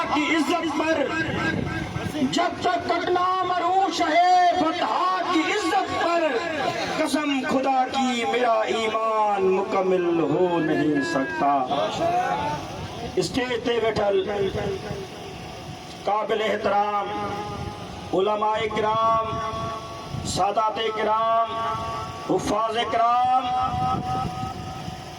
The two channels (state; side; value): identical; both; correlation 1.00